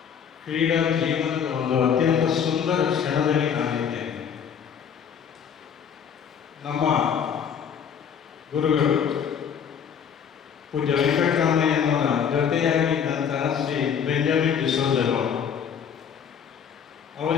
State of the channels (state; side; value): quieter; right; 7.6 dB